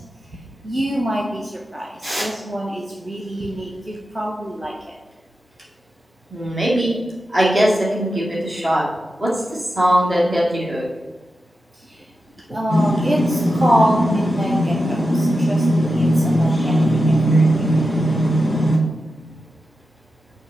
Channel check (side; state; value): both; normal; correlation 0.90